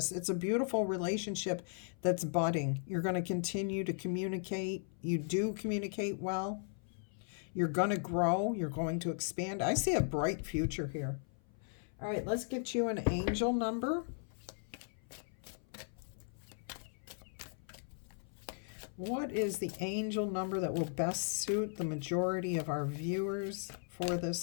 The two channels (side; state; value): right; silent; 53 dB below the other